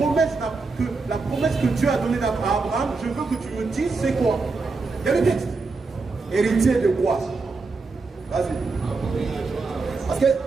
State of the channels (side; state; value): left; quieter; 4.0 dB